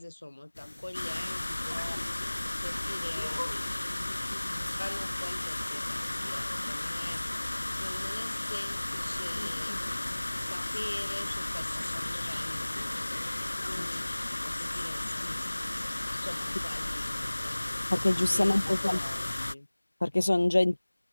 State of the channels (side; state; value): both; inverted; correlation -1.00